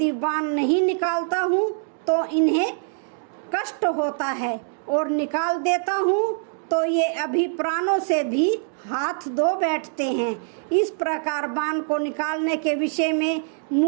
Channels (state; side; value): silent; left; digital silence